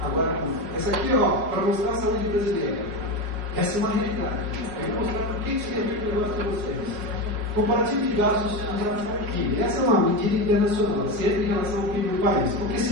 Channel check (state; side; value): late; left; 5.6 ms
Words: Agora vamos lá. Essa aqui, para mostrar a saúde brasileira. Essa é uma realidade. Eu vou mostrar por que isso tem a ver com o negócio para vocês. Comparativo de gastos em relação ao PIB. Essa é uma medida internacional, sempre em relação ao PIB do país. Porque